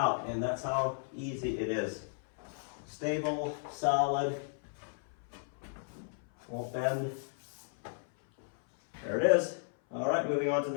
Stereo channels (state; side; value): silent; right; 55 dB below the other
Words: and that's how easy it is. Stable, solid, won't bend. There it is. All right, moving on to